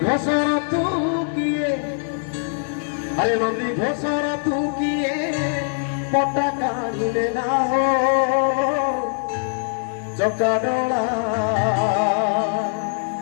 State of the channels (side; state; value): right; silent; 55 dB below the other